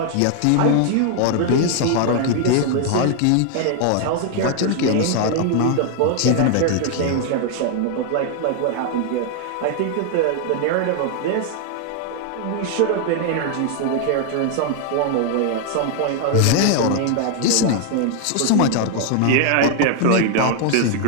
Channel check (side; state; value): both; different; correlation 0.00